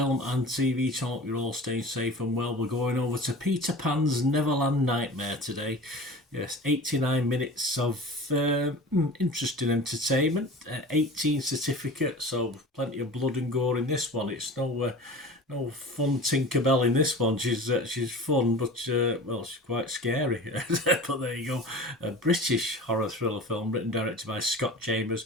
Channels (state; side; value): normal; both; correlation 0.37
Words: and TV channel. You're all staying safe and well. We're going over to Peter Pan's Neverland Nightmare today. Yes, 89 minutes of interesting entertainment. 18 certificate, so plenty of blood and gore in this one. It's no fun Tinkerbell in this one. She's fun, but well, she's quite scary. But there you go. A British horror thriller film written and directed by Scott Chambers,